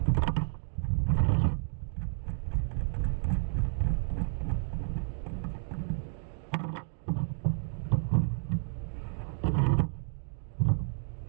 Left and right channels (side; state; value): left; silent; digital silence